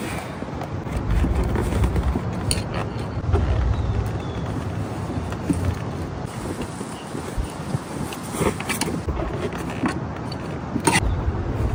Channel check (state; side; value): identical; both; correlation 1.00